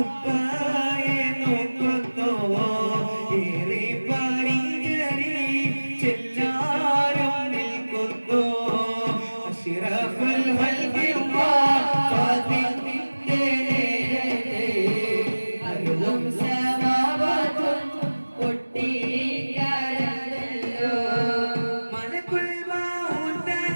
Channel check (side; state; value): both; inverted; correlation -1.00